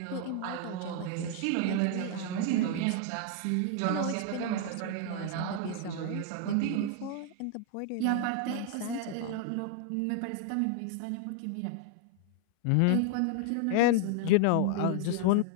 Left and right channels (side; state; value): both; different; correlation 0.00